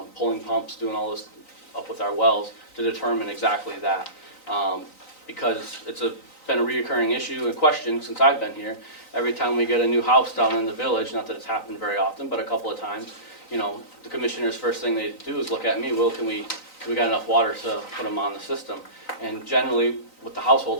pulling pumps, doing all this up with our wells to determine exactly that. Because it's been a reoccurring issue and question since I've been here. Every time we get a new house down in the village, not that it's happened very often, but a couple of times, the commissioners' first thing they do is look at me, well, we got enough water to put them on the system? And generally, with the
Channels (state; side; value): late; right; 3.9 ms